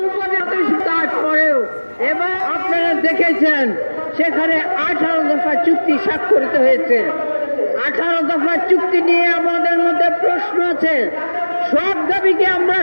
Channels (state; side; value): inverted; both; correlation -1.00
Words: উপদেষ্টা, তারপরেও এবং আপনারা দেখেছেন সেখানে 18 দফা চুক্তি স্বাক্ষরিত হয়েছে। 18 দফা চুক্তি নিয়ে আমাদের মধ্যে প্রশ্ন আছে। সব দাবিকে আমরা